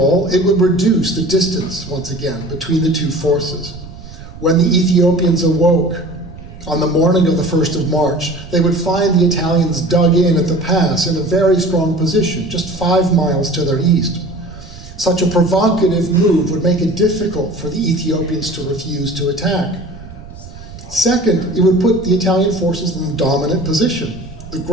it would reduce the distance, once again, between the 2 forces. When the Ethiopians awoke on the morning of the 1st of March, they would find the Italians dug in at the pass in a very strong position, just 5 miles to their east. Such a provocative move would make it difficult for the Ethiopians to refuse to attack. Second, it would put the Italian forces in a dominant position. The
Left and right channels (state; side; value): noise; right; rumble, 16 dB below the sound